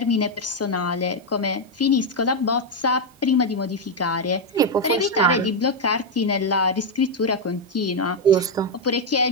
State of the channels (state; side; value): normal; both; correlation 0.02